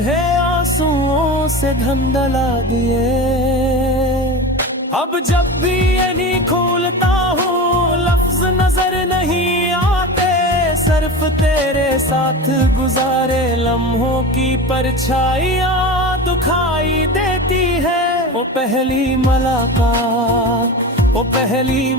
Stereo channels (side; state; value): both; normal; correlation 0.28